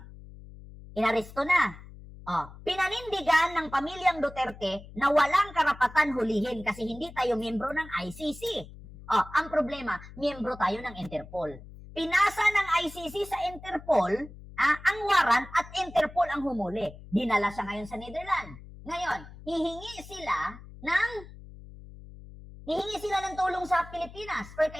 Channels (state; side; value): noise; left; hum, 17 dB below the sound